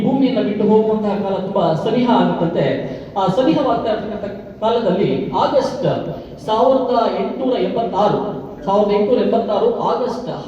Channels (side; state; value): both; identical; correlation 1.00